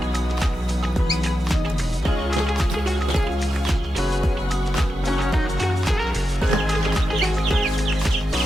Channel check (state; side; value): normal; both; correlation 0.88